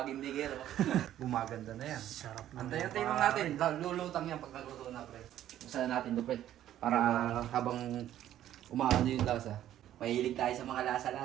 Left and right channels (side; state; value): left; quieter; 12.1 dB